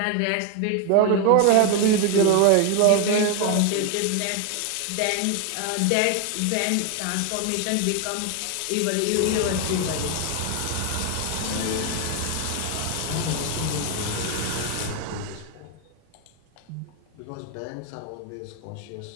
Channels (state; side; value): different; both; correlation 0.01